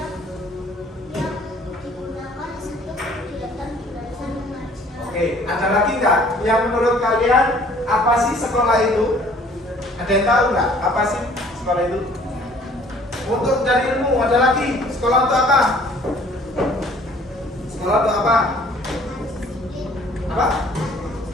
digunakan untuk kegiatan belajar mengajar. Oke, ada lagi nggak yang menurut kalian apa sih sekolah itu? Ada yang tahu nggak apa sih sekolah itu? Untuk cari ilmu. Ada lagi, sekolah untuk apa? Sekolah untuk apa? Apa?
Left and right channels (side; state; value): both; normal; correlation 0.55